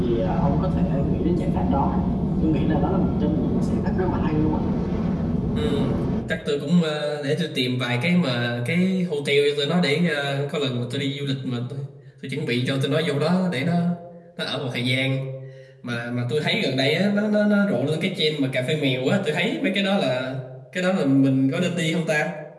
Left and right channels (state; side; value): identical; both; correlation 1.00